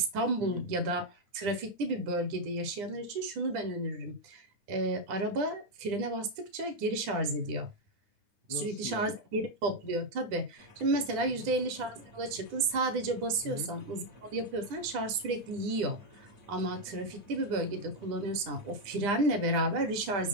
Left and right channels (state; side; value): late; left; 10 ms